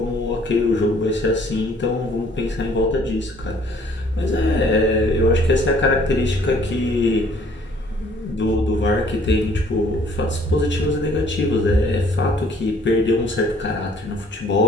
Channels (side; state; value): both; normal; correlation 0.59